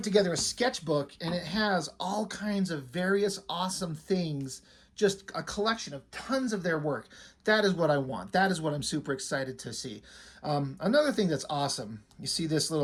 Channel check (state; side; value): identical; both; correlation 1.00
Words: together a sketchbook, and it has all kinds of various awesome things, just a collection of tons of their work. That is what I want. That is what I'm super excited to see. Another thing that's awesome, you see this